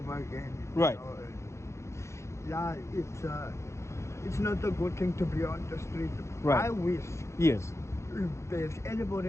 again. Right. And, yeah, it's not a good thing to be on the street. Right. I wish Yes. if there's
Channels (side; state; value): right; late; 0.14 ms